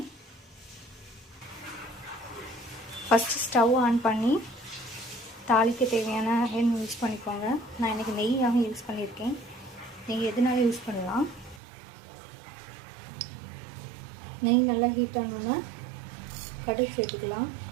ஃபஸ்ட்டு ஸ்டவ் ஆன் பண்ணி தாளிக்க தேவையான எண்ணெய் யூஸ் பண்ணிக்கோங்க. நான் இன்றைக்கி நெய்யாக யூஸ் பண்ணியிருக்கேன். நெய் எதுனாலும் யூஸ் பண்ணலாம். நெய் நல்லா ஹீட் ஆனோன்னா கடுகு சேர்த்துக்கலாம்.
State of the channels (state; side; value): drops out; left; at 11.6 s